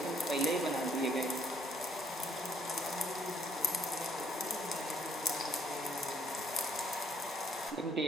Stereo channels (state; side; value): normal; both; correlation 0.65